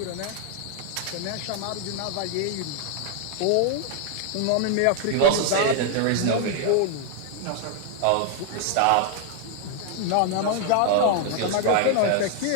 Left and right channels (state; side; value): different; both; correlation 0.00